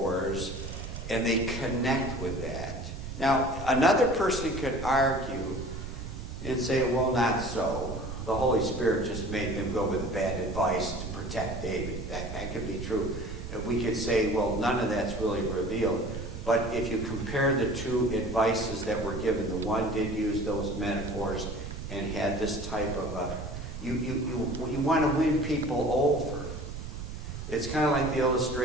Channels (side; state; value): right; noise; rumble, 8 dB below the sound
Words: and they connect with that. Now, another person could argue and say, well, not so. The Holy Spirit just made them go with the bad advice to protect David. That could be true. We could say, well, none of that's really revealed. But if you compare the two advices that were given, the one did use those metaphors and had this type of you want to win people over. It's kind of like the